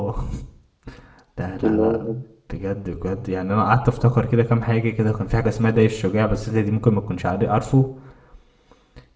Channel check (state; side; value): identical; both; correlation 1.00